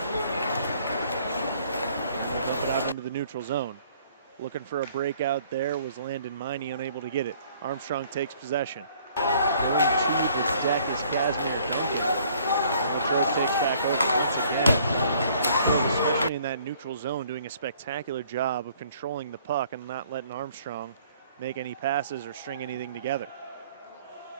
Flip it out into the neutral zone. Looking for a breakout there was Landon Miney, unable to get it. Armstrong takes possession. Going to the deck is Casman Duncan. Latrobe takes back over once again. Especially in that neutral zone, doing a spectacular job of controlling the puck and not letting Armstrong make any passes or string anything together.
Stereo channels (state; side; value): inverted; both; correlation -0.59